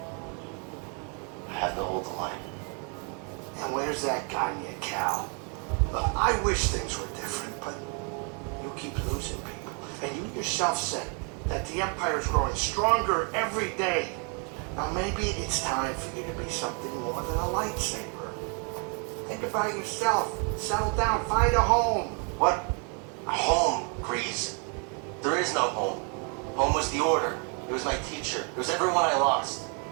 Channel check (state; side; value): quieter; left; 37.3 dB